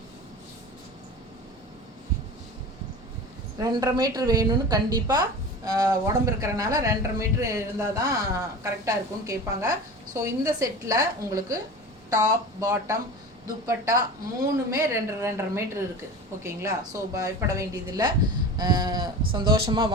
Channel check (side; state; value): both; normal; correlation 0.33